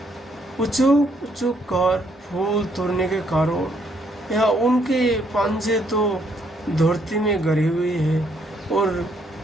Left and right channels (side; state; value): both; normal; correlation 0.70